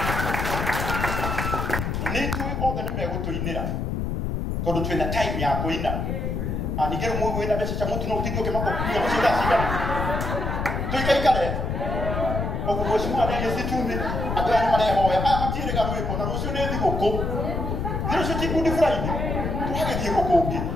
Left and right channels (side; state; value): left; noise; rumble, 2 dB below the sound